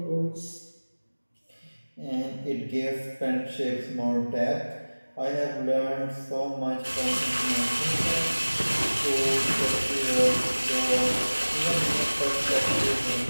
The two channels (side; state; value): both; inverted; correlation -1.00